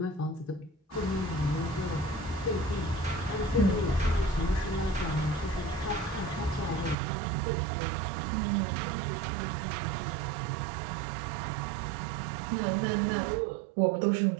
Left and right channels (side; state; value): left; drops out; at 7.0 s